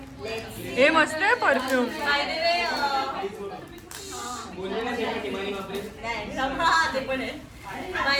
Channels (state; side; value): identical; both; correlation 1.00